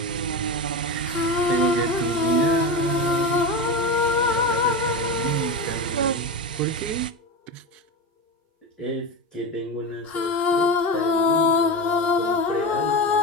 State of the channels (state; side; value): normal; both; correlation 0.21